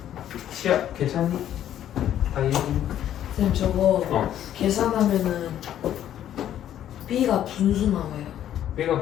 시야 괜찮니? 다이어리 쌤 저거 어. 계산하면은 B가 분수 나와요. B가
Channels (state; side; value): quieter; right; 11.1 dB